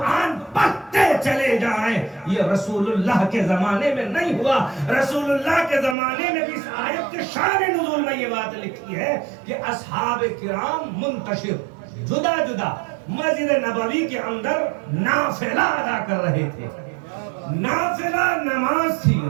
پڑھتے چلے جائیں، یہ رسول اللہ کے زمانے میں نہیں ہوا۔ رسول اللہ کے زمانے میں بھی اس آیت کے شان نزول میں یہ بات لکھی ہے کہ اصحاب کرام منتشر جدا مسجد نبوی کے اندر نافلہ ادا کر رہے تھے۔ نافلہ نماز تھی،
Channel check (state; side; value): drops out; left; at 6.0 s